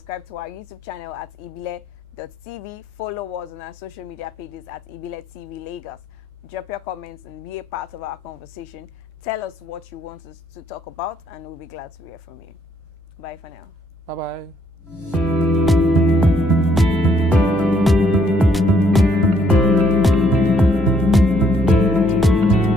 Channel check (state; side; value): normal; both; correlation 0.68